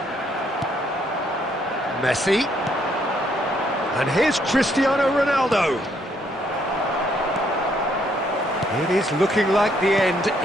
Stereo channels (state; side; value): normal; both; correlation 0.70